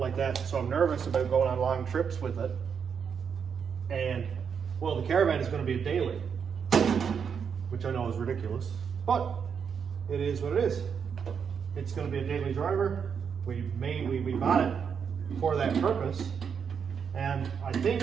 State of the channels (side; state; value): left; quieter; 6.8 dB